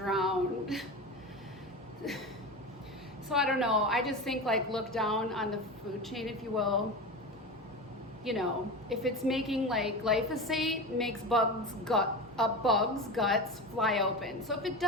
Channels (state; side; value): normal; both; correlation 0.25